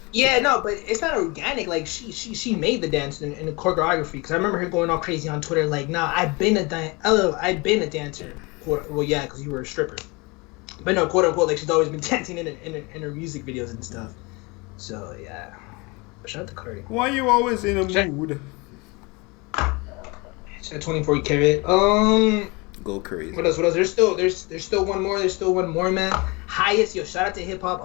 Yeah, no, but it's not organic. Like she made the dance in the choreography. Because I remember her going all crazy on Twitter, like, "Nah, I've been a dancer." Well, yeah, because you were a stripper. But no, quote unquote, like she's always been dancing in her music videos and stuff. So yeah, but shout out to Cardi. Why you always in a mood? Shout out 24 Karat. Go crazy. What else? There's still one more. There's still one more, man. Highest, yo, shout out to Hip Hop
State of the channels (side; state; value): right; quieter; 26.8 dB